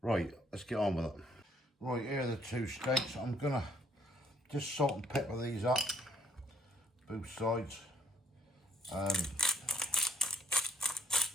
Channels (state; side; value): normal; both; correlation 0.67